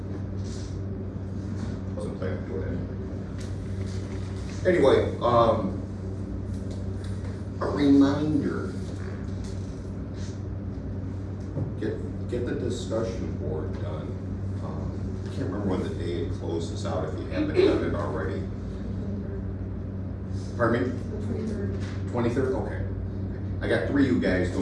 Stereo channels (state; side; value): identical; both; correlation 1.00